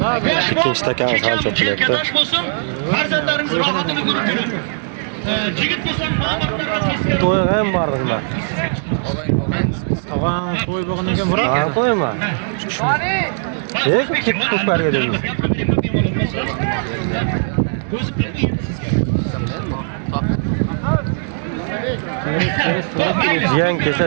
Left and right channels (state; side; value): silent; left; 63 dB below the other